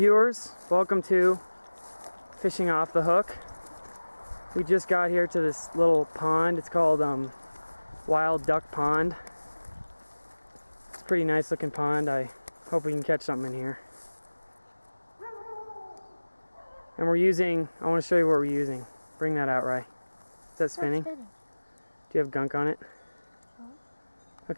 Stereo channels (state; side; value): inverted; both; correlation -1.00